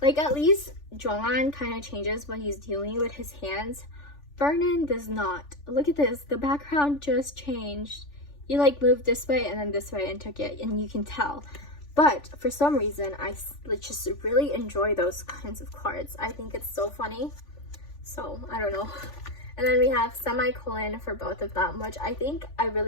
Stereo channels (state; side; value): late; right; 3.4 ms